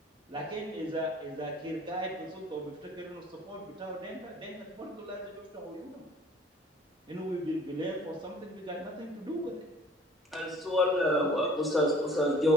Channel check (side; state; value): both; normal; correlation 0.49